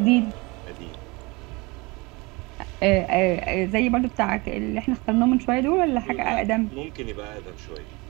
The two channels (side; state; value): left; quieter; 25.5 dB